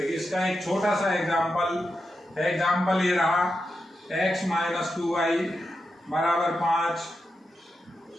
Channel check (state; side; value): normal; both; correlation 0.88